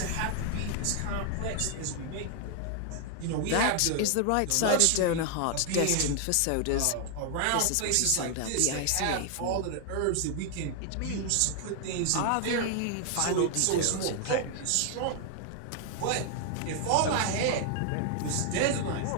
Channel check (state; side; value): different; both; correlation 0.00